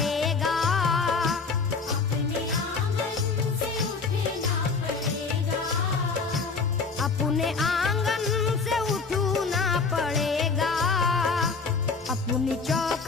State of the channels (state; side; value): quieter; right; 4.6 dB